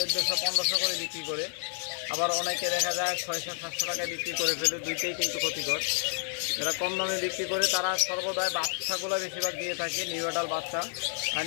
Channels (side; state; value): right; silent; digital silence